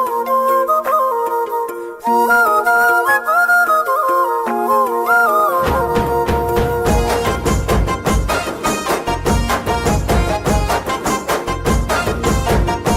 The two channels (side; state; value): both; identical; correlation 1.00